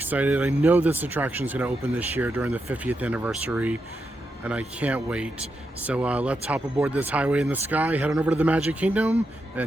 I know this attraction is going to open this year during the 50th anniversary, and I can't wait. So let's hop aboard this highway in the sky, head on over to the Magic Kingdom,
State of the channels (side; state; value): both; normal; correlation 0.85